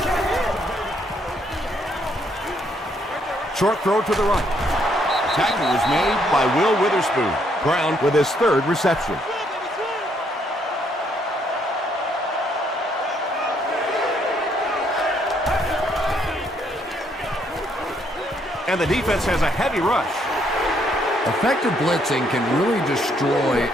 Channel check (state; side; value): normal; both; correlation 0.71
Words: Short throw to the right. Tackle was made by Will Witherspoon. Brown with his 3rd reception. And the defense has a heavy rush. Effective blitzing can really destroy